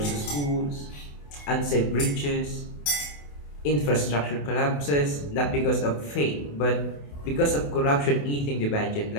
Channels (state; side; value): late; right; 28 ms